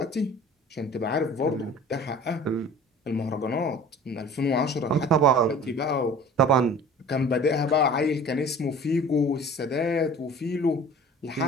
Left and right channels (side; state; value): both; normal; correlation 0.44